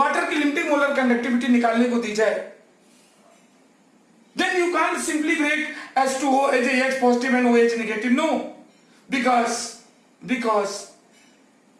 की limiting molar conductivity निकालने को दी जाए, then you can't simply break H2O as a H positive and OH negative. No, because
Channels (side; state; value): both; identical; correlation 1.00